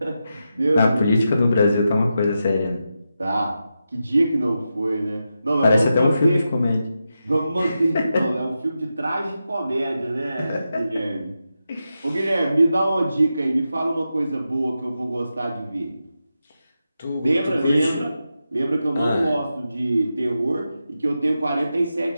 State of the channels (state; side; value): inverted; both; correlation -0.89